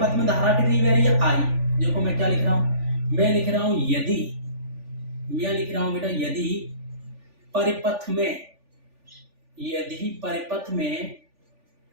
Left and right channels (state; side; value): late; left; 3.4 ms